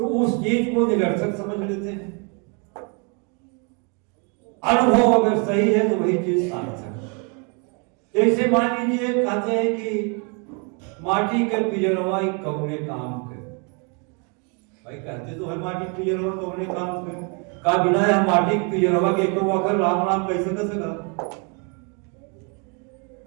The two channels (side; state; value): left; quieter; 35.1 dB